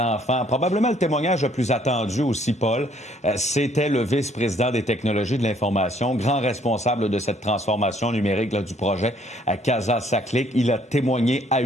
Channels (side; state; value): both; normal; correlation 0.64